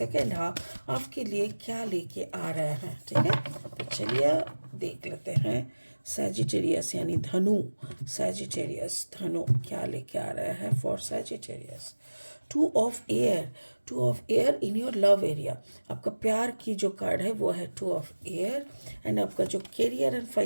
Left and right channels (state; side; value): inverted; both; correlation -1.00